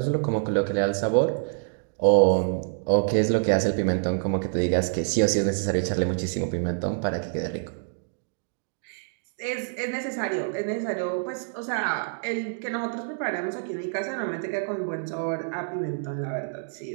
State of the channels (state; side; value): silent; left; digital silence